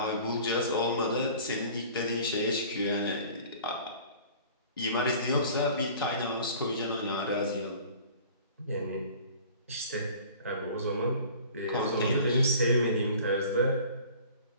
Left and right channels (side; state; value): both; inverted; correlation -0.47